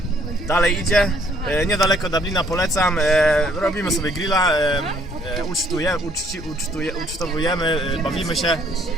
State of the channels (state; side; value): normal; both; correlation 0.64